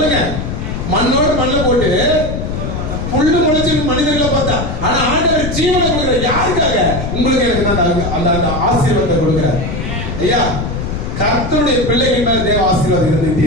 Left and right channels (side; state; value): left; noise; rumble, 4 dB below the sound